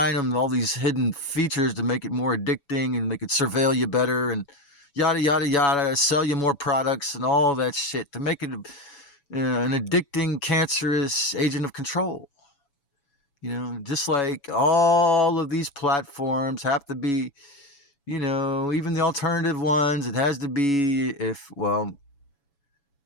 them all these hidden features to make it more addicting, and they could surveil you better and yada, yada, yada, sell you more products and all that shit to make it an addicting, cancerous agent of control. Just like all of these platforms have to be, even the alternative ones, it has to be,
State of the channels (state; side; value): late; right; 7.1 ms